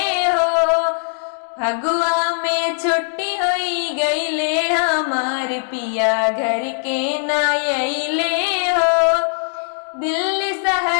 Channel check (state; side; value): silent; right; digital silence